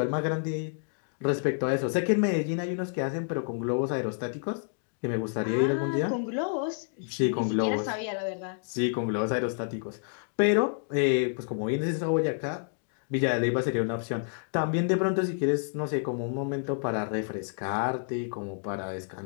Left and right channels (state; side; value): silent; right; 58 dB below the other